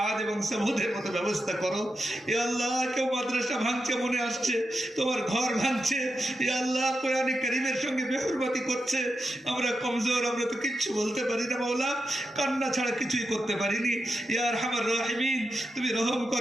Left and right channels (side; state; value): both; normal; correlation 0.88